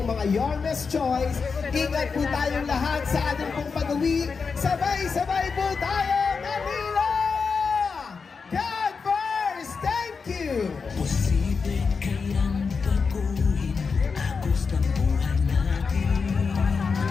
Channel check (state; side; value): quieter; right; 5.2 dB